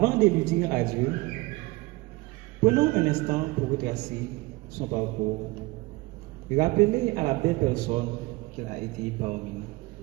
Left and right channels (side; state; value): left; quieter; 22.1 dB